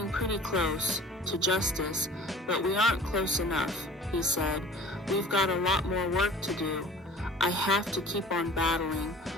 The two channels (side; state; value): both; normal; correlation 0.46